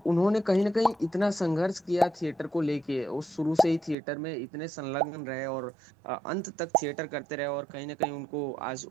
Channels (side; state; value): left; drops out; at 4.0 s